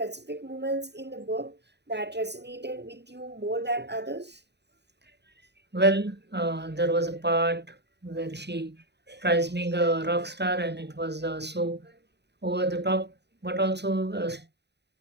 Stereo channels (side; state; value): left; late; 0.49 ms